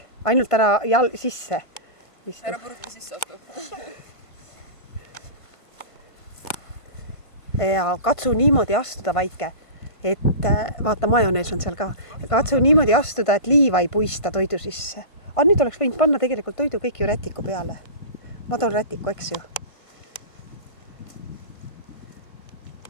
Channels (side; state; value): right; late; 1.5 ms